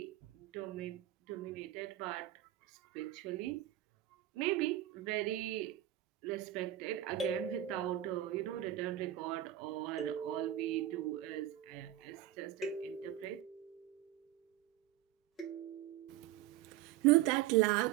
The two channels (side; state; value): left; quieter; 13.6 dB